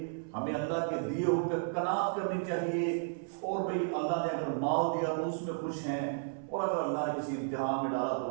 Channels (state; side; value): silent; left; 56 dB below the other